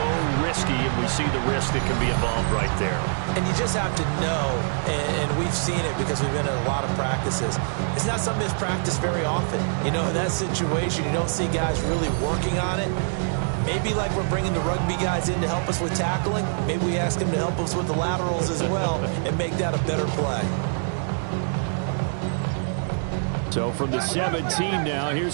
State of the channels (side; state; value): left; silent; digital silence